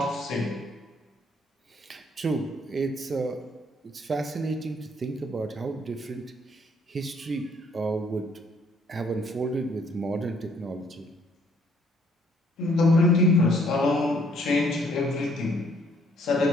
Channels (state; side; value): normal; both; correlation 0.65